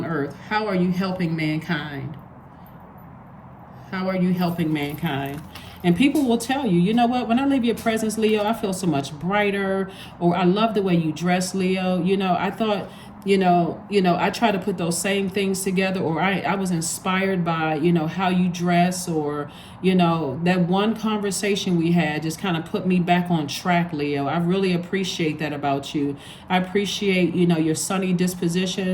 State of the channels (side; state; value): both; identical; correlation 1.00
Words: earth? How are you helping mankind? How are you helping mankind? And people will tell you, you know what, when I leave your presence, Leo, I feel so much brighter, or I love the way you dress, Leo. You know, I thought, you know, I try to put those same things together, or I was inspired by, you know, how you dress, or, you know, that one conversation we had just kind of put me back on track, Leo. I really appreciate that about you. I appreciate, you know, your sunny